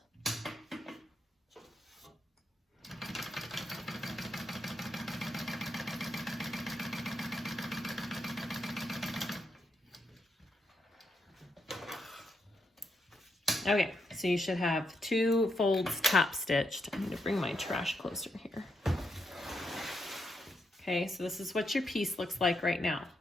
Okay, so you should have 2 folds top stitched. I need to bring my trash closer here. Okay, so this is what your piece looks like right now.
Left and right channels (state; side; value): normal; both; correlation 0.81